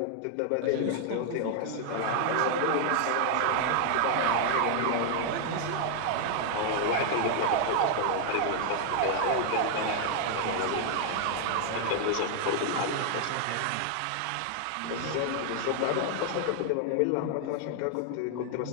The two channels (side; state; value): both; different; correlation 0.00